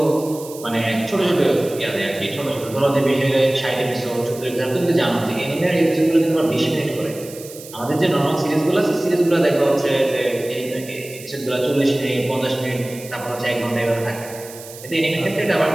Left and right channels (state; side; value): noise; right; hiss, 16 dB below the sound